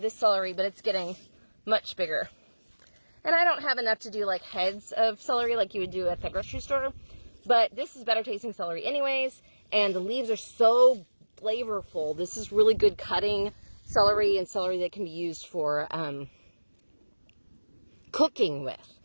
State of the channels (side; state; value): both; inverted; correlation -1.00